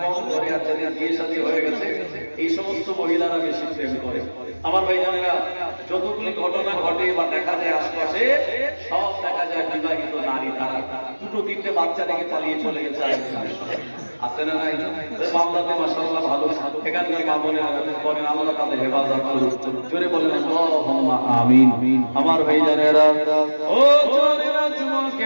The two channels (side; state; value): both; inverted; correlation -1.00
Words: কম করে, আর যাদের বিয়ে শাদী হয়ে গেছে, এই সমস্ত মহিলারা বেশি প্রেম করে। আমার ভাইজানেরা, যতগুলি ঘটনা ঘটে বা দেখা যায় আশপাশে, সব দেখা যায় বিবাহিত নারী, তারা দুটো তিনটে বাচ্চা রেখে পালিয়ে চলে গেছে। আছে না নাই? মামলাতে মাশাআল্লাহ ভালো, এখানকার মা বোনেরা বলেন, আল্লাহ তাদের হেফাজত করুন। জোরে বলেন আল্লাহুম্মা আমিন। আমার ভাইজানেরা, ও জওয়ানেরা,